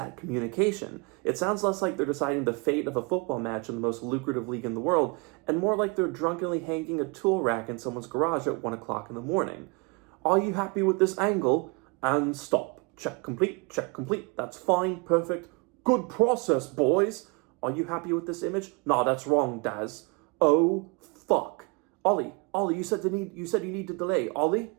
communication? It sounds less like they're deciding the fate of a football match in the most lucrative league in the world, and more like they're drunkenly hanging a tool rack in someone's garage at 1 o'clock in the morning. Are you happy with this angle? And stop. Check complete. That's fine, perfect. Good process, boys. Are you happy with this image? Nah, that's wrong, Daz. Oh, fuck. Ollie, you said you need to delay. Ollie?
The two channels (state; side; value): quieter; left; 30.2 dB